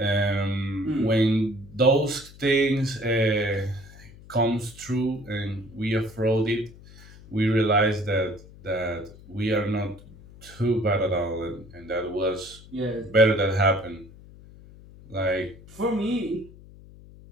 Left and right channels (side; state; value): left; noise; hum, 20 dB below the sound